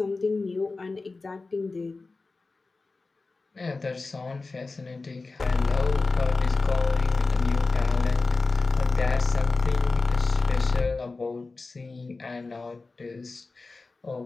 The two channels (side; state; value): right; quieter; 3.7 dB